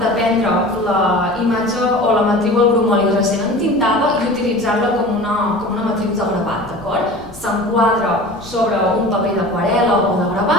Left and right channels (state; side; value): noise; left; rumble, 22 dB below the sound